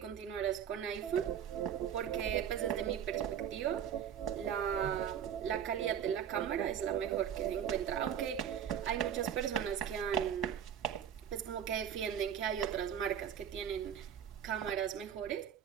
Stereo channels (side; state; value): left; quieter; 8.9 dB